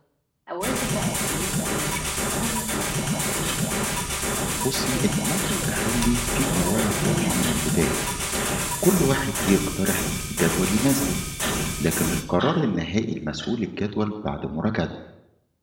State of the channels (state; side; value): identical; both; correlation 1.00